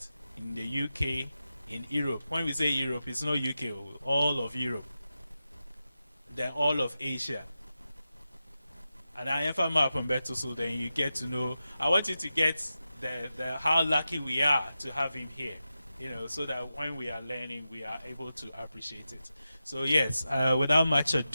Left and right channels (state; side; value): inverted; both; correlation -0.91